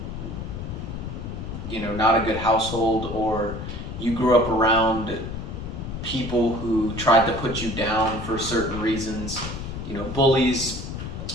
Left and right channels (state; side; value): noise; left; rumble, 7 dB below the sound